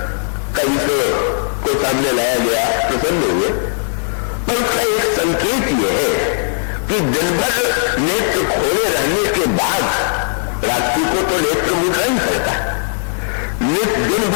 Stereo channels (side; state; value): right; silent; digital silence